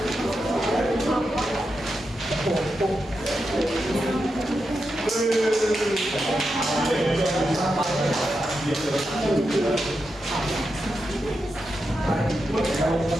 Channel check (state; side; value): normal; both; correlation 0.87